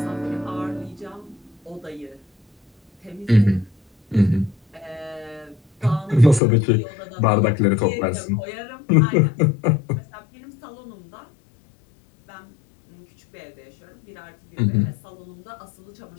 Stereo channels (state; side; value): drops out; right; at 6.4 s